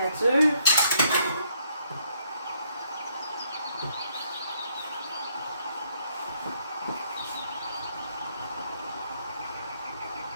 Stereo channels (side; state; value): both; inverted; correlation -0.70